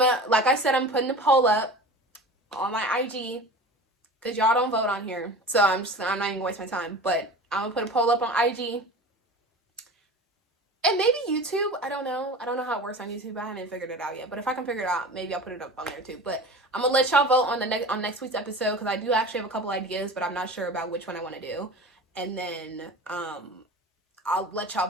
like I said, I'm putting a poll up on my IG, because y'all don't vote on here. So I'm not even gonna waste my time. But I'm gonna put a poll up on IG. And maybe YouTube. I don't know how it works on YouTube. I haven't figured it out yet. But if I can figure it out, maybe I'll put it up on there too. But I'm gonna let y'all vote on next week's episode, because I do actually have a couple ideas, but I'm not sure about which one I want to do. And then I'll let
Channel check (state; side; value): normal; both; correlation 0.36